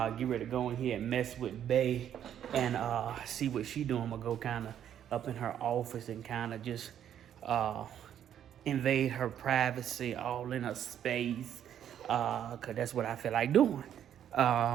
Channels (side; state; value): left; quieter; 9.9 dB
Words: ready to go in here and mess with Bae. And see what she doing. I'm going to go kind of up in her office and kind of just invade her privacy all in her space. Because that's what I feel like doing.